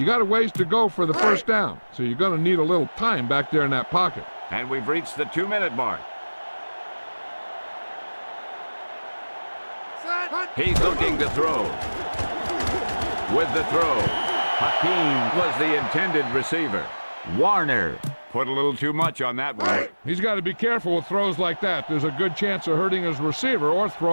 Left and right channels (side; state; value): both; inverted; correlation -1.00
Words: got a ways to go for the first down, so you're going to need a little time back there in that pocket. And we've reached the 2-minute mark. He's looking to throw. With the throw, Hakeem was the intended receiver. Warner put a little too much on that one. He's got to be careful with throws like that. There's a good chance of hurting his receiver or